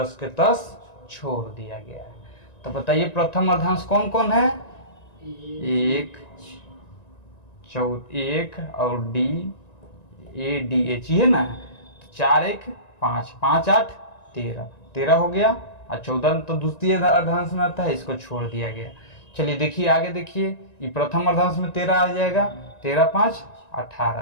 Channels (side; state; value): right; late; 1.9 ms